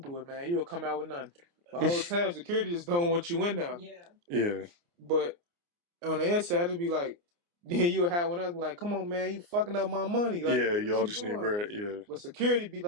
do it, man. You'll come out with nothing. The whole time, security just don't want you in there. Yeah. But on the inside, it'd be like, then you'll have one else like, come on, man, you fucking up my money. Like, Yeah, what y'all you just need doing? bread. Yeah. But security be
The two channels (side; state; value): left; late; 29 ms